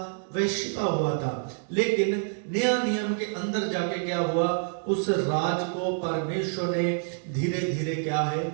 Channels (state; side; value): silent; left; 60 dB below the other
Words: वह छिपा हुआ था, लेकिन नया नियम के अंदर जाके क्या हुआ, उस राज को परमेश्वर ने धीरे धीरे क्या है,